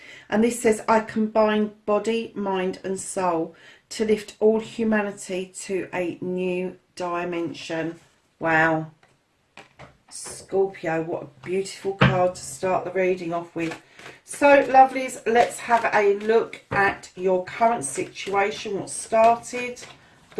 And this says, I combine body, mind and soul to lift all humanity to a new dimension. Wow. Scorpio, what a beautiful card to start the reading off with. So, lovelies, let's have a look at your current situation. What started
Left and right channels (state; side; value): identical; both; correlation 1.00